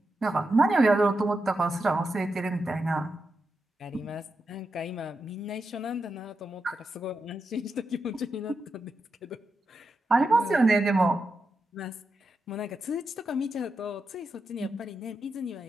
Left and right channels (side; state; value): both; normal; correlation 0.87